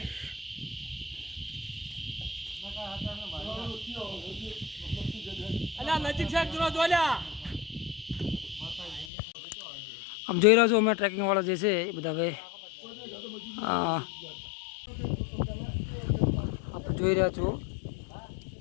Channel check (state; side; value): drops out; right; at 9.1 s